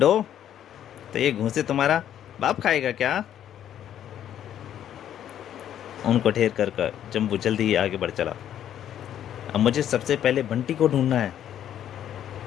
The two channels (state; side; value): quieter; right; 10.6 dB